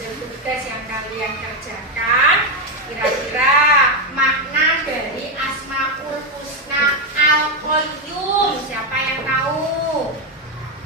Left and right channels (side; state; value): both; normal; correlation 0.05